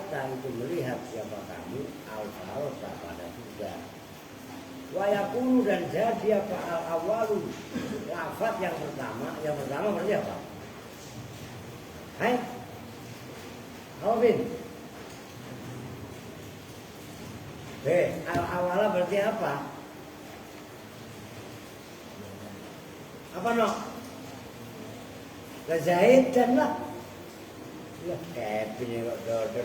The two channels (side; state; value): both; identical; correlation 1.00